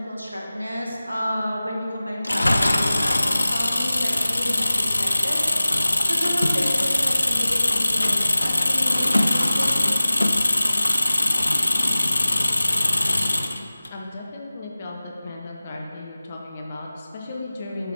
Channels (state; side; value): inverted; both; correlation -0.97